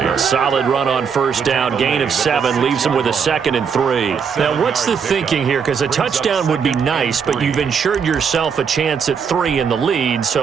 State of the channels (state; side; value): quieter; left; 6.5 dB